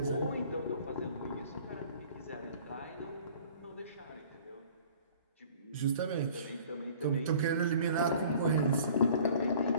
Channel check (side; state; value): both; inverted; correlation -0.49